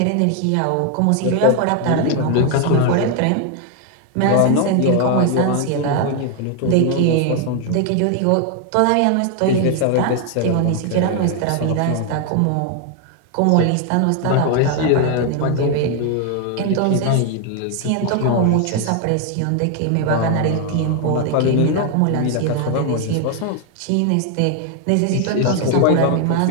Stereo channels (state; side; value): different; both; correlation 0.01